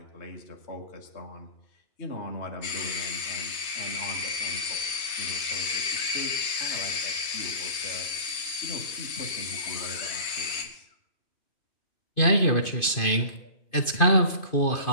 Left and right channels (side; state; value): right; late; 2.5 ms